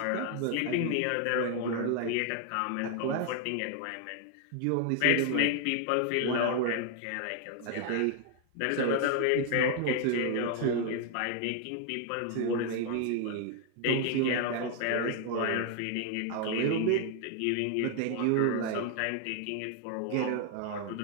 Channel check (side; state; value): both; different; correlation 0.00